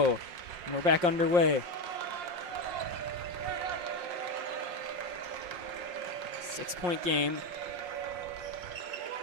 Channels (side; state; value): left; late; 5.6 ms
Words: and we're back underway. 6-point game.